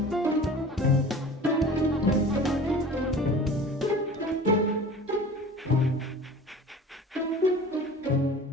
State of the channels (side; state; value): both; normal; correlation 0.40